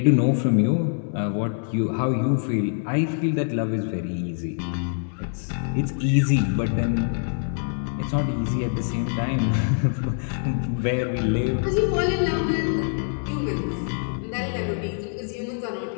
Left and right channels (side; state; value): right; silent; digital silence